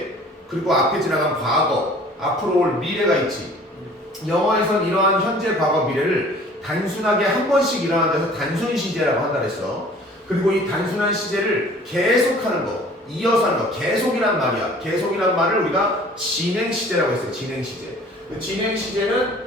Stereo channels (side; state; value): both; normal; correlation 0.50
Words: 그리고 앞에 지나간 과거, 앞으로 올 미래가 있지. 영어에선 이러한 현재, 과거, 미래를 단순하게 한 번씩 일어나는 데서 단순 시제라고 한다 그랬어. 그리고 이 단순한 시제를 계속하는 거, 이어서 하는 거, 계속이란 말이야. 계속이란 말을 우리가 진행 시제라고 했어요. 진행 시제. 진행 시제는